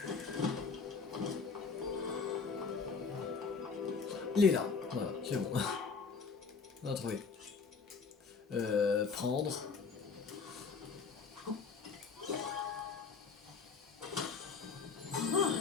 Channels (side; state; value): right; quieter; 5.1 dB